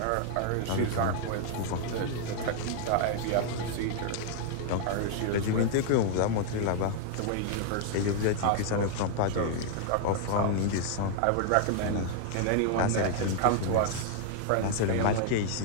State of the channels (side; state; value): both; different; correlation 0.00